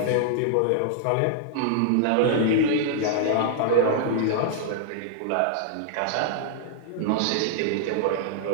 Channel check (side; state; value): both; different; correlation -0.01